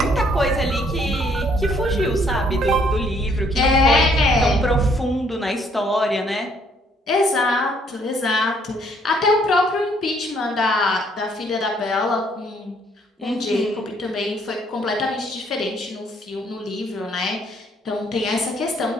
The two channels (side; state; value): both; normal; correlation 0.66